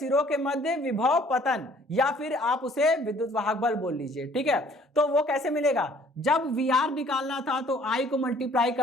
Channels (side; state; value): both; normal; correlation 0.57